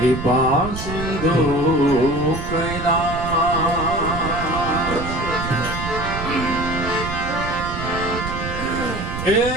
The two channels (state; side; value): noise; right; rumble, 7 dB below the sound